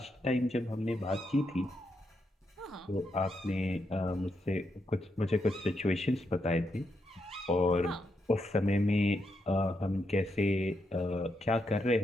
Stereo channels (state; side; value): normal; both; correlation 0.82